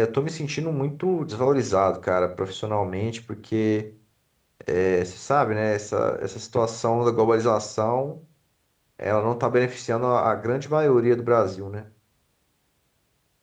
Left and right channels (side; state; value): both; identical; correlation 1.00